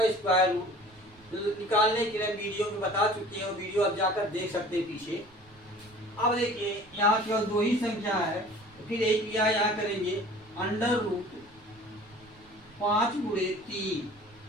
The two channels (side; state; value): right; noise; rumble, 27 dB below the sound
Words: स्क्वायर रूट निकालने के लिए वीडियो में बता चुके हैं, वीडियो आप जाकर देख सकते हैं पीछे। अब देखिए यहाँ केवल 2 ही संख्या है, तो फिर एक क्रिया यहाँ करेंगे अंडर रूट 5 गुणे 3,